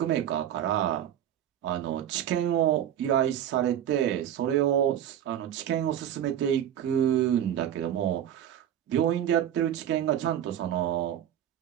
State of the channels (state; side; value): quieter; left; 10.6 dB